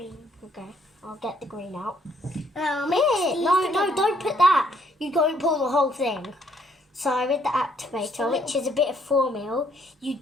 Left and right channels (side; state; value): both; normal; correlation 0.68